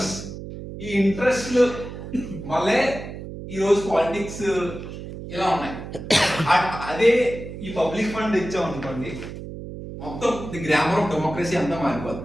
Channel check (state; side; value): noise; right; hum, 10 dB below the sound